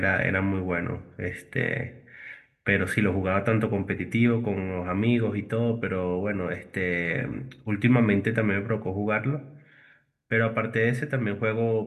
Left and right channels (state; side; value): identical; both; correlation 1.00